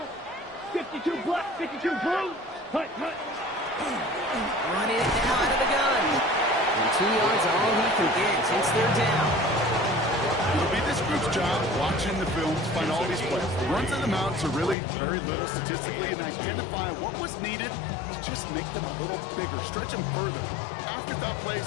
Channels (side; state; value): right; drops out; at 14.8 s